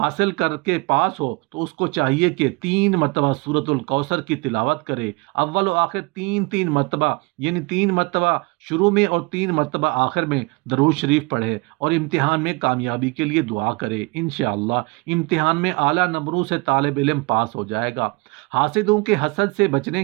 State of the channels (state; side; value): quieter; left; 27.7 dB